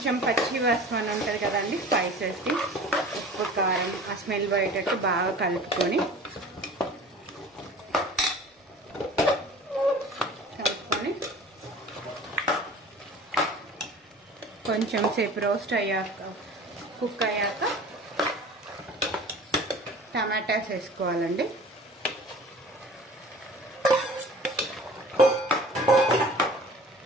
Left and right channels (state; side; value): normal; both; correlation 0.43